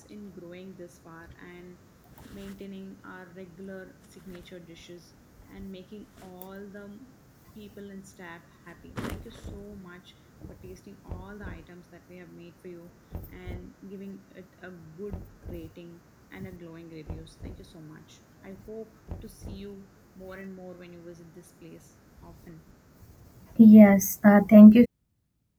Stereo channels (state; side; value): identical; both; correlation 1.00